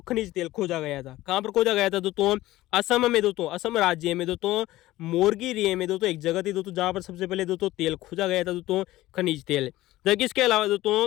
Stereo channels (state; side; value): quieter; right; 16.7 dB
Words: खनिज तेल खोजा गया था। कहाँ पर खोजा गया था दोस्तों? असम में दोस्तों, असम राज्य में दोस्तों मोरगेरिये में दोस्तों एक जगह थी दोस्तों जहाँ पर सबसे पहले दोस्तों तेल खोजा गया था दोस्तों, खनिज तेल। जबकि इसके अलावा